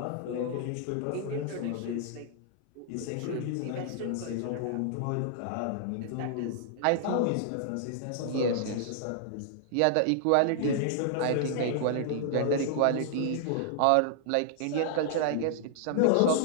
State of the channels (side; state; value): both; different; correlation -0.01